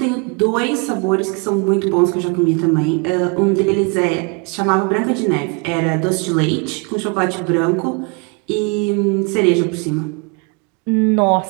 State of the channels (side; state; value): left; quieter; 32.0 dB